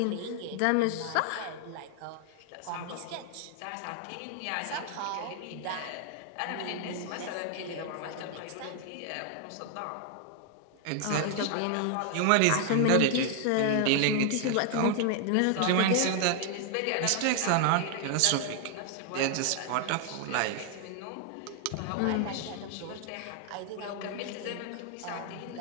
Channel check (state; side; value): different; both; correlation 0.00